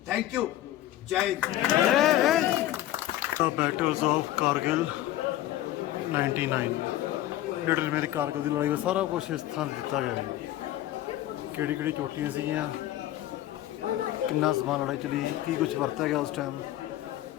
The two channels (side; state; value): right; quieter; 14.1 dB